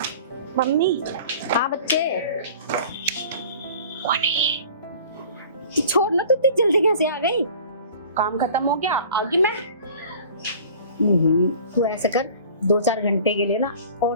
मम्मी। हाँ बच्चे। कौन है? छोड़ ना, तू इतनी जल्दी कैसे आ गई? काम खत्म हो गया, आ गई मैं। तू ऐसे कर, 2-4 घंटे के लिए ना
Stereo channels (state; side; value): inverted; both; correlation -0.45